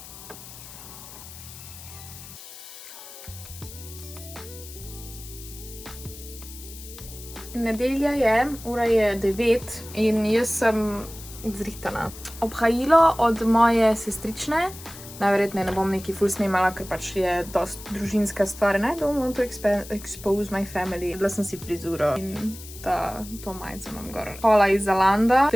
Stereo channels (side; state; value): left; noise; hiss, 15 dB below the sound